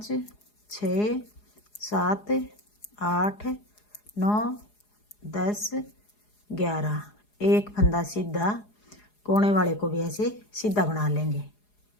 6 7 8 9 10 11, एक फंदा सीधा, कोने वाले को भी ऐसे सीधा बना लेंगे।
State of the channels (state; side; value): late; right; 4.8 ms